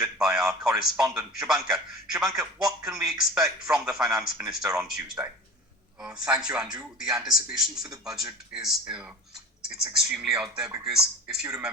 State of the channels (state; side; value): normal; both; correlation 0.36